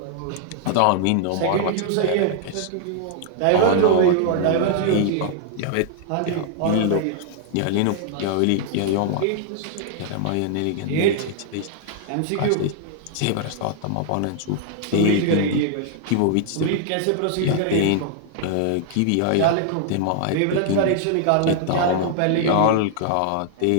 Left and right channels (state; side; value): different; both; correlation 0.00